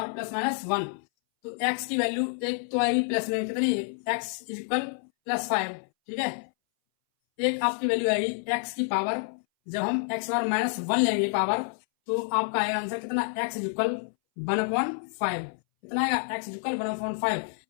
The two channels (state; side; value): silent; right; 59 dB below the other